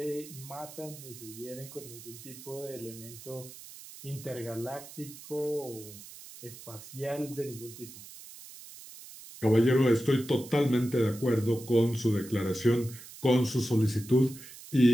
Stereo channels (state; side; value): noise; right; hiss, 16 dB below the sound